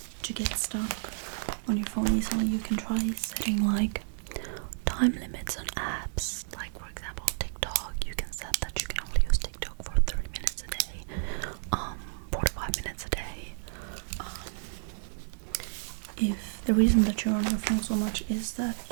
to get stuck on your phone easily, you can try setting like time limits on apps. Like for example, TikTok, you can set that you can only use TikTok for 30 minutes a day, 45 minutes a day. If the reason that you're on your phone so much is that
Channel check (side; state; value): left; silent; digital silence